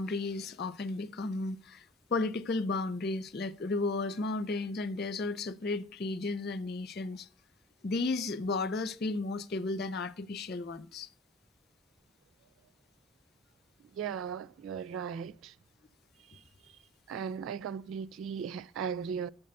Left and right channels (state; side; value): normal; both; correlation 0.43